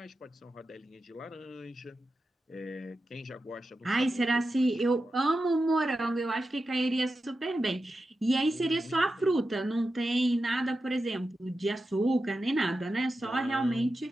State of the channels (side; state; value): both; normal; correlation 0.91